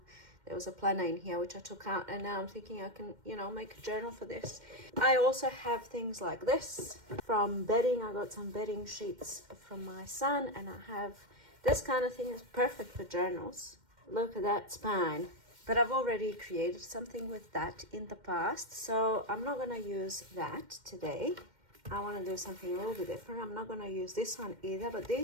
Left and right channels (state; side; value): late; left; 2.1 ms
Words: was a planner in here which I took out, and now I'm thinking I can, make a journal for this. I also have things like this from bedding. I got some bedding sheets from my son, and I have this kind of thing is perfect for journals. Look at that spine. But I've already created something with that in the past, so I'm not going to use that today. I want to do something a little bit different. I'm not going to use this one either, but